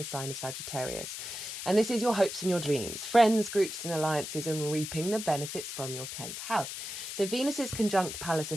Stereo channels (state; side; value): noise; left; hiss, 7 dB below the sound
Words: sign of Sagittarius. And this is your hopes and your dreams, friends, groups and alliances, and reaping the benefits from your 10th house. So Venus is conjunct Pallas